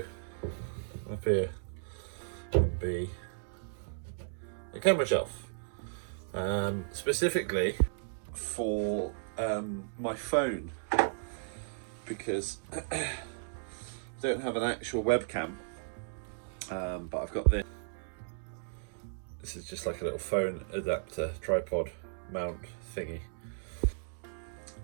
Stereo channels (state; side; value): silent; left; digital silence